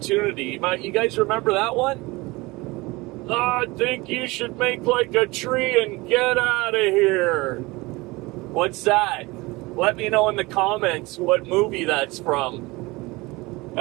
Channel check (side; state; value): left; quieter; 22.7 dB